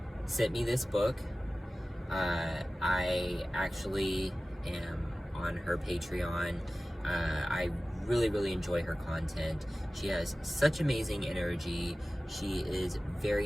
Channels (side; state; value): both; normal; correlation 0.97